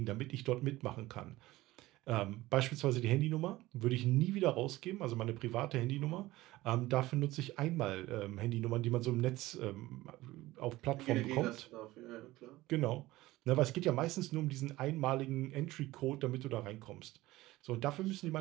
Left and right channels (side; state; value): left; quieter; 17.9 dB